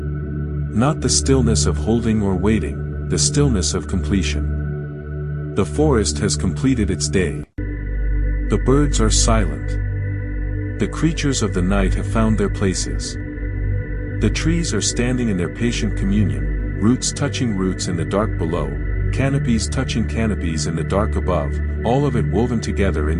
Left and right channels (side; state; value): both; identical; correlation 1.00